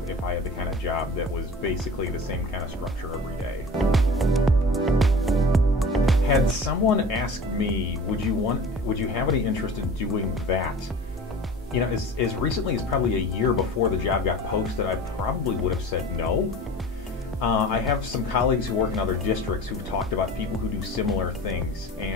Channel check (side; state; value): both; normal; correlation 0.39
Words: I had the kind of job that was basically the same kind of structure every day. Had someone asked me, would you have any interest in doing that? You know, as recently as probably a year before the job got posted, I probably would have said no. I have some colleagues who work in other districts who've talked about people who do similar things,